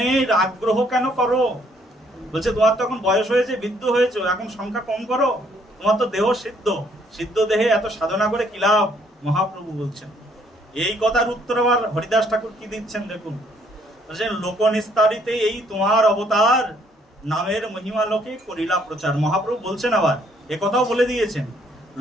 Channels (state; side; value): normal; both; correlation 0.66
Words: আগ্রহ কেন করো? বলছে তোমার তখন বয়স হয়েছে, বৃদ্ধ হয়েছে, এখন সংখ্যা কম করো, তোমার তো দেহ সিদ্ধ, সিদ্ধ দেহে এত সাধনা করে কি লাভ? মহাপ্রভু বলছেন। এই কথার উত্তর আবার হরিদাস ঠাকুর কি দিচ্ছেন দেখুন, বলছেন লোক নিস্তারিতে এই তোমার অবতার, নামের মহিমা লোকে করিলা প্রচার। মহাপ্রভু বলছেন, আবার এ কথাও বলে দিয়েছেন,